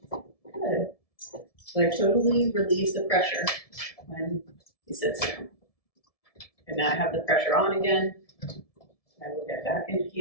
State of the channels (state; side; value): late; right; 1.7 ms